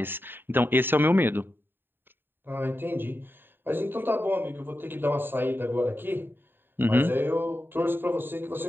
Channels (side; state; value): left; late; 0.097 ms